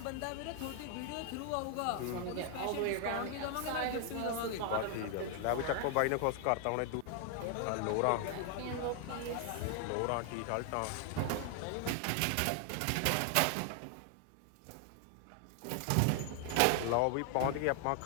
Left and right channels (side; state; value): both; different; correlation 0.00